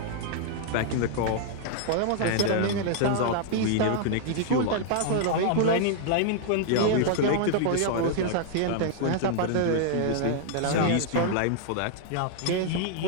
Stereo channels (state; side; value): different; both; correlation 0.00